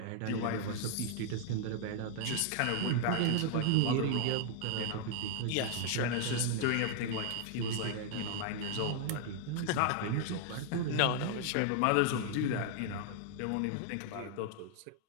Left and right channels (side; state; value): both; different; correlation 0.00